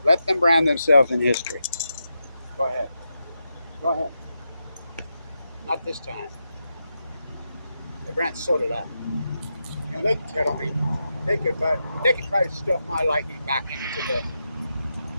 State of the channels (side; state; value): both; inverted; correlation -0.87